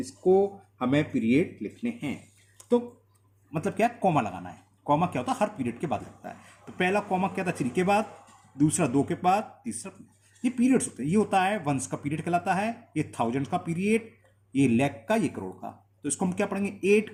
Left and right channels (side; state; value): both; identical; correlation 1.00